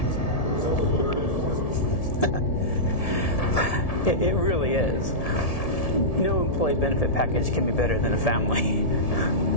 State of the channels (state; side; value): late; right; 1.7 ms